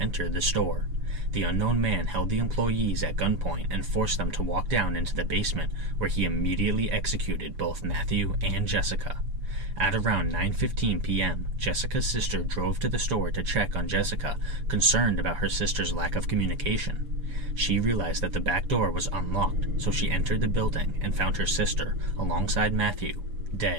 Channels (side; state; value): left; late; 7.1 ms